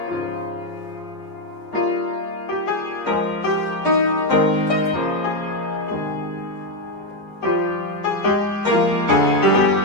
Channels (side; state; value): both; normal; correlation 0.06